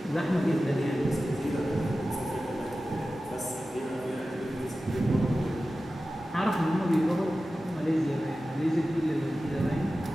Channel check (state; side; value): normal; both; correlation 0.94